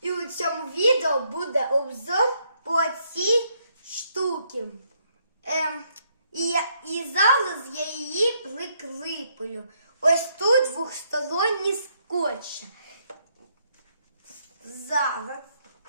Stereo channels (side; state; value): both; inverted; correlation -0.73